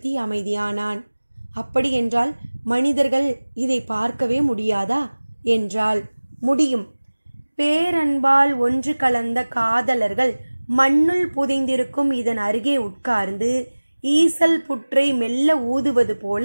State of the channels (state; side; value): inverted; both; correlation -1.00